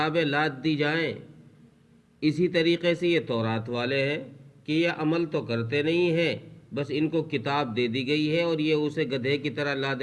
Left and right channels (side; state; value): both; identical; correlation 1.00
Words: لاد دی جائیں، اسی طریقے سے یہ تورات والے ہیں کہ یہ عمل تو کرتے نہیں ہیں، بس ان کو کتاب دے دی گئی ہے اور یہ اسے گدھے کی طرح